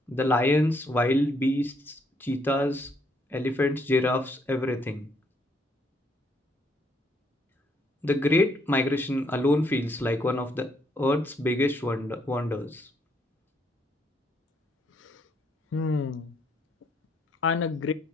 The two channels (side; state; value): both; normal; correlation 0.71